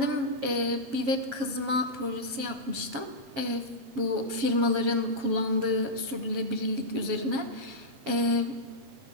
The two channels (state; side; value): late; left; 7.4 ms